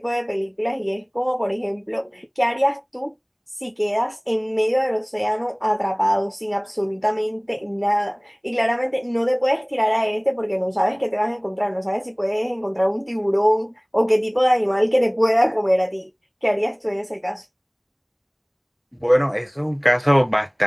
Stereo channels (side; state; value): both; identical; correlation 1.00